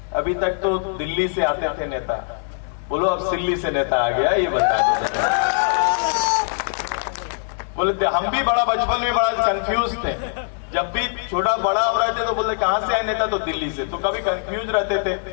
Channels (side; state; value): right; silent; digital silence